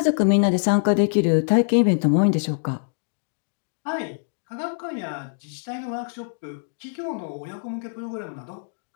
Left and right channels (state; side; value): silent; right; digital silence